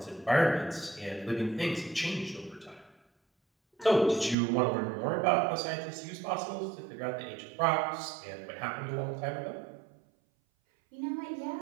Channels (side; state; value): left; drops out; at 4.4 s